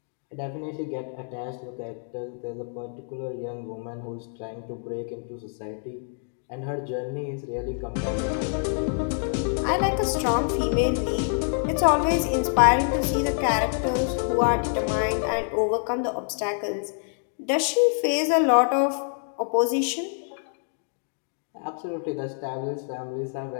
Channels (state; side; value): silent; right; 61 dB below the other